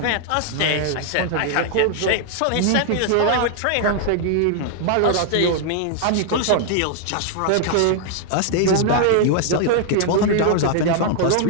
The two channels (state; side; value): different; both; correlation 0.00